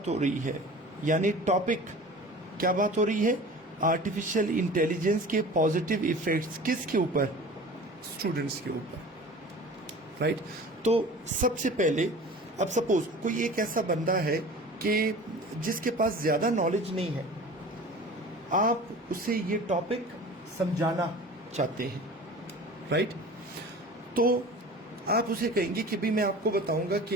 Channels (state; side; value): normal; both; correlation 0.40